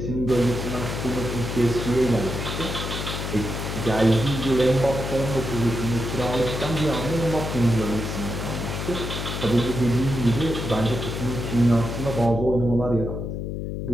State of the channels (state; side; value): noise; left; hum, 4 dB below the sound